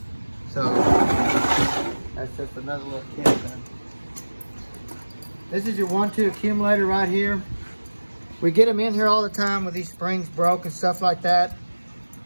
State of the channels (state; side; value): inverted; both; correlation -1.00